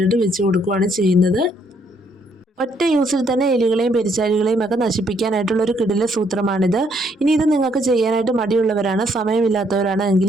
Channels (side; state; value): both; normal; correlation 0.70